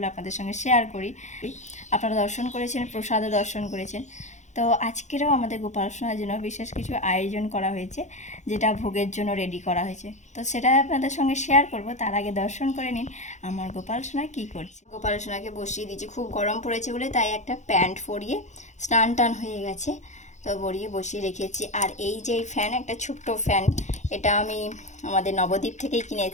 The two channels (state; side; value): late; right; 0.34 ms